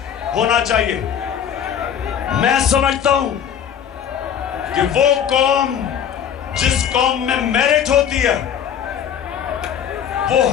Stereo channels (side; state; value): right; quieter; 8.7 dB